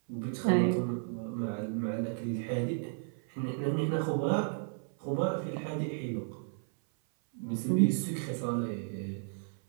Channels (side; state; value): left; silent; 56 dB below the other